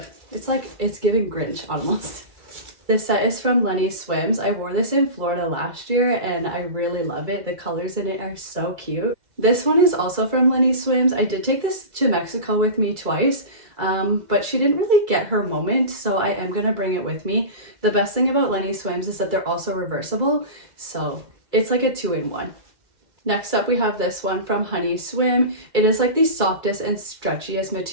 It's like, it's giving Grinch almost. This set is from Lenny Swims. I wore this in Florida last year and I really love it. The colors in it are so cute. This one is also from Lenny Swims. I did take this to Mexico with me twice, but she didn't really get her moment, so I am gonna bring it with me. The best thing about Lenny Swims is that they're also reversible, so it's like a 2-in-1. Next up, we have this one from Honey Swim. It is like the softest and stretchiest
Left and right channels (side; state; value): left; late; 2.3 ms